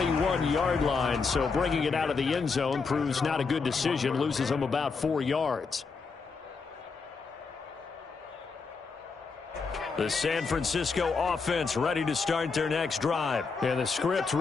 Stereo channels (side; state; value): right; quieter; 4.8 dB